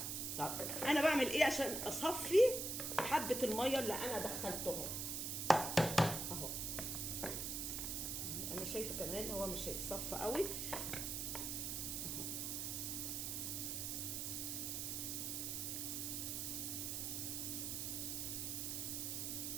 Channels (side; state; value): right; noise; hiss, 2 dB below the sound